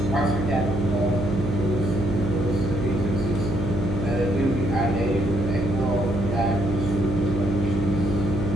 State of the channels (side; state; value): right; noise; hum, 3 dB below the sound